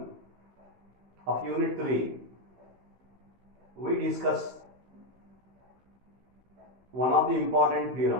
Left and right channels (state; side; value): late; left; 15 ms